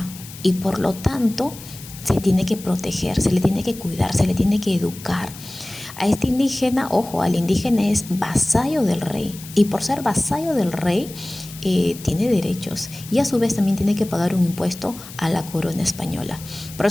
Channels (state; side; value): noise; left; hiss, 16 dB below the sound